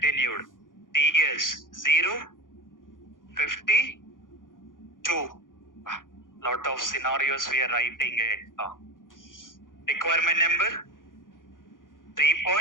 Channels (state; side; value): late; right; 0.89 ms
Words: TS 0, 52. Lot of scenarios we are writing it. Requirement number